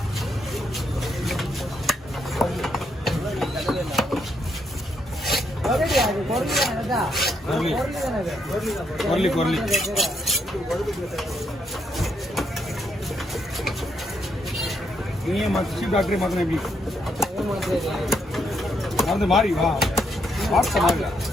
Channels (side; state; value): both; normal; correlation 0.76